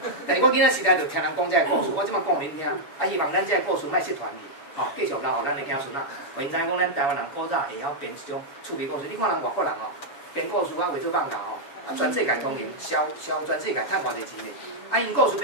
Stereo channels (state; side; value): late; right; 7.0 ms